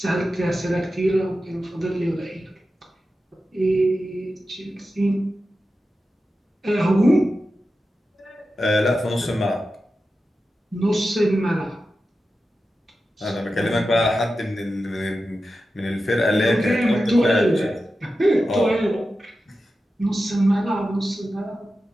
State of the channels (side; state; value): both; normal; correlation 0.92